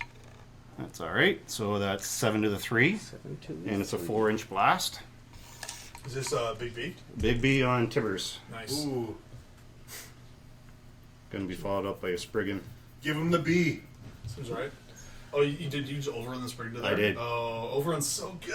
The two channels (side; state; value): both; identical; correlation 1.00